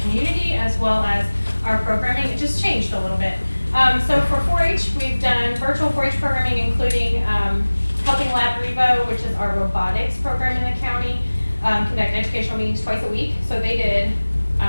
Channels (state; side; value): inverted; both; correlation -1.00